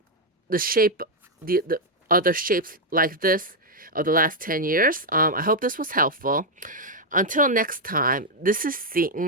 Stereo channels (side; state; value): both; normal; correlation 0.00